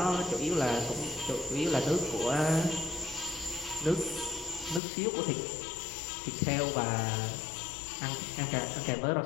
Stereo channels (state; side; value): drops out; right; at 4.8 s